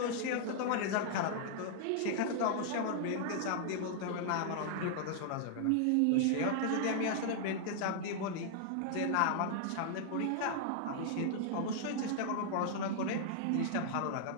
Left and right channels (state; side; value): different; both; correlation -0.01